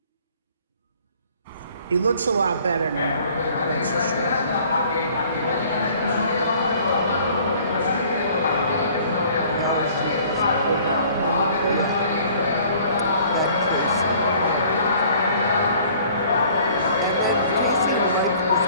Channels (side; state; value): both; inverted; correlation -0.54